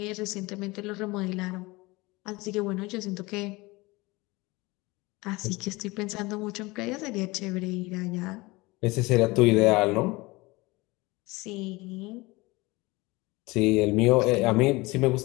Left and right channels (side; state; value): right; quieter; 22.7 dB